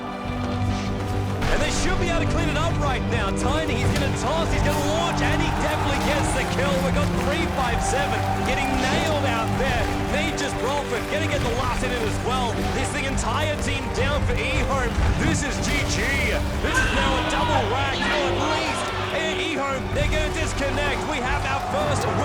And they should be able to clean it up right now. Tiny, he's going to toss, he's going to launch, and he definitely gets the kill. We've got 3-5-7 getting nailed out there. Nature's Bradford going to get the last hit in as well. This the entire team down for eHome. This is GG. This is now a double rack, at least. And eHome, they're going to disconnect. We have our first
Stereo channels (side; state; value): both; identical; correlation 1.00